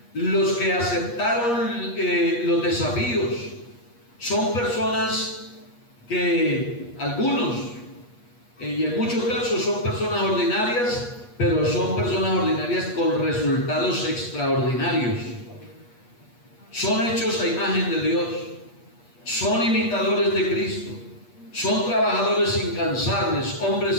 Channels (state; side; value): late; right; 8.4 ms